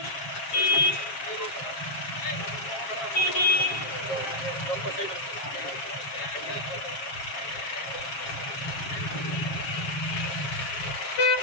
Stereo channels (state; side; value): late; right; 7.5 ms